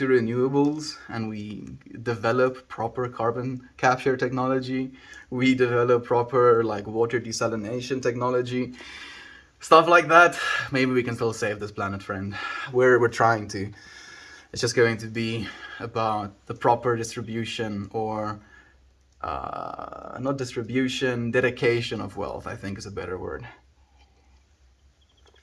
renewables and we develop proper carbon capture technology. We develop proper water desalination technology. Stuff like that. Maybe we can still save this planet, friend. We're trying to. It's just going to be about the proper distribution or not distribution, dedication of wealth, I think is a better word.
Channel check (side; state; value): both; identical; correlation 1.00